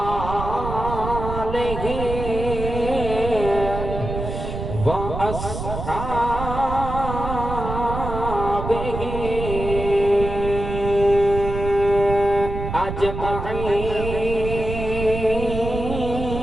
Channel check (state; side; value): noise; right; rumble, 6 dB below the sound